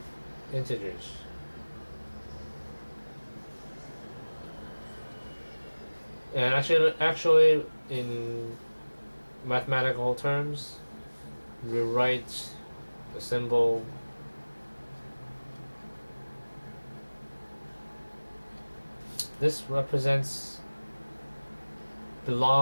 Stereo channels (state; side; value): inverted; both; correlation -1.00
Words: integers. And actually, in mathematical terms, we write the symbol this